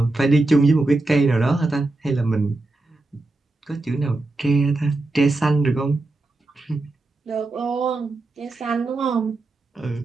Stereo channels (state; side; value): quieter; left; 3.0 dB